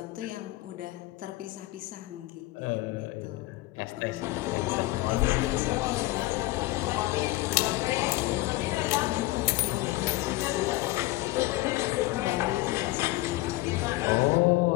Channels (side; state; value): right; quieter; 19.1 dB